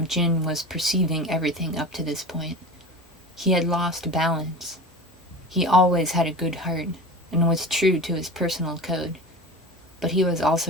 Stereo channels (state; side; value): normal; both; correlation 0.32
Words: Jin was perceiving everything up to this point. He had lost balance. He always had a good heart and was true to his personal code, but he was